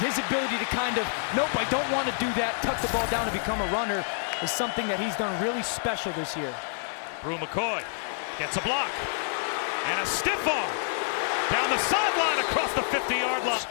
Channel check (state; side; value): silent; right; digital silence